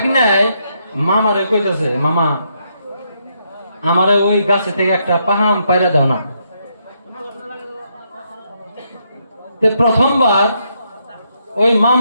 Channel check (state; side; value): inverted; both; correlation -0.77